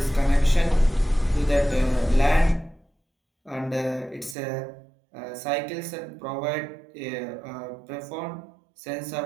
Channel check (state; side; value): drops out; left; at 4.4 s